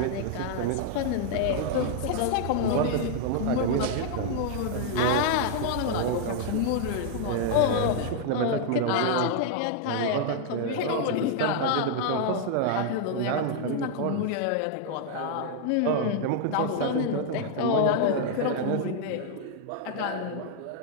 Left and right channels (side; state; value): both; different; correlation 0.00